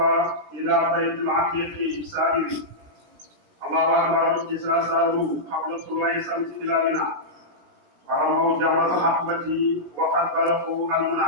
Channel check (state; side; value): late; left; 16 ms